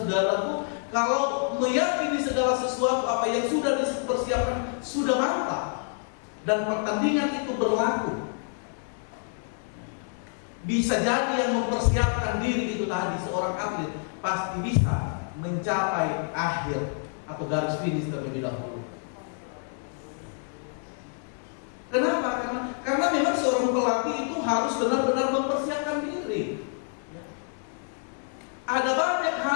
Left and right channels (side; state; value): right; silent; 60 dB below the other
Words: kalau meyakini segala sesuatu apa yang sudah dipersiapkan sudah mantap dan pertandingan itu berlaku, bisa jadi yang mempersiapkan diri itu tadi, seorang atlet, pasti bisa mencapai akhir atau garis finish terlebih dahulu. Kenapa? Karena memang seorang pelatih itu harus benar-benar mempersiapkan diri. Ada banyak